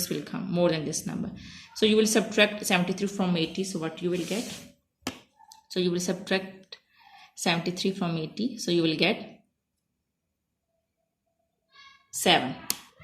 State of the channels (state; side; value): identical; both; correlation 1.00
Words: will come more than this number. So you will subtract 73 from 80. So what you will get? So you will subtract 73 from 80. So you will get 7.